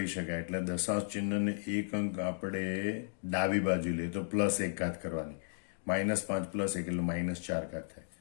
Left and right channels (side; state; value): right; silent; digital silence